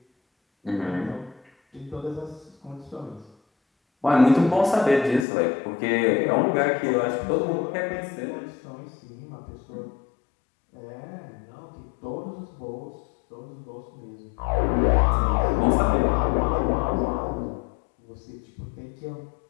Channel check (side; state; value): right; drops out; at 5.2 s